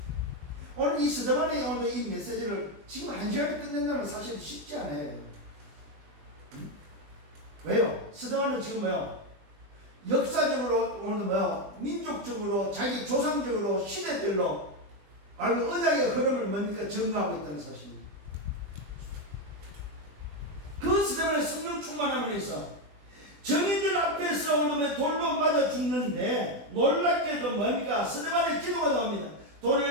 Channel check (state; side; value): late; left; 20 ms